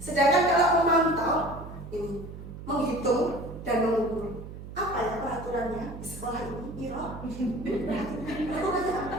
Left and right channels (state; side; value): noise; right; hum, 12 dB below the sound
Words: Sedangkan kalau memantau ini menghitung dan mengukur, apa ya peraturannya di sekolah ini? Peraturannya apa?